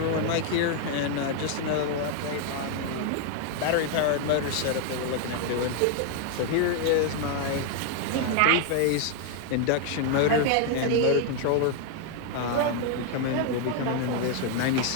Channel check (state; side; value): different; both; correlation 0.00